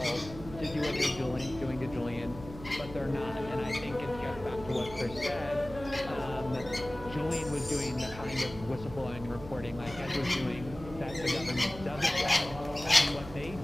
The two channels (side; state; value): right; noise; hum, 14 dB below the sound